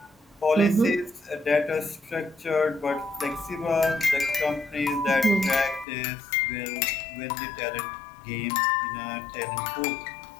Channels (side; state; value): right; drops out; at 5.9 s